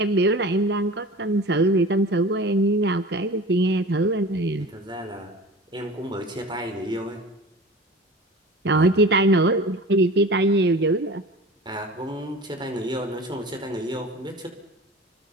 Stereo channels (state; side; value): normal; both; correlation 0.37